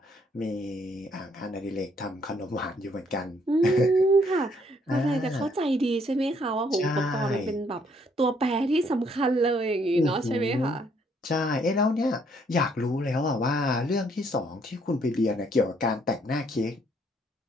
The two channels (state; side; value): normal; both; correlation 0.67